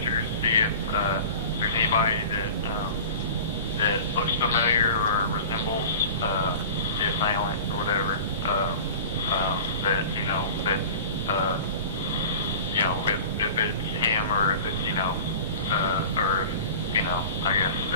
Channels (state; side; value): inverted; both; correlation -0.37